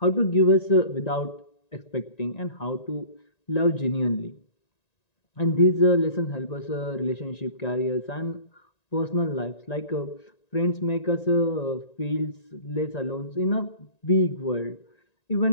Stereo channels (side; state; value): right; late; 1.9 ms